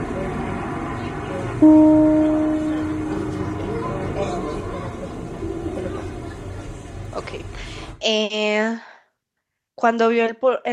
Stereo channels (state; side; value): identical; both; correlation 1.00